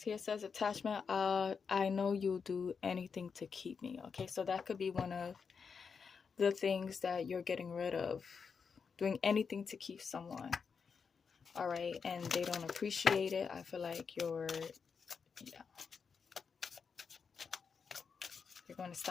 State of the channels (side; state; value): right; quieter; 5.8 dB